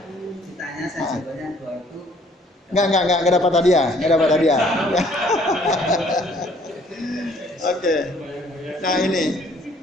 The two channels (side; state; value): both; normal; correlation 0.60